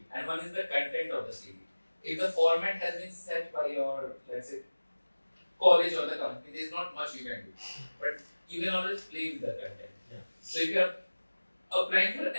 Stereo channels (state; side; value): inverted; both; correlation -1.00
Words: and one is the content of the CV. If the format has been set by your, let's say, college or the company, there is not much you can do, but you can always play with the content. Yeah. So if you are applying for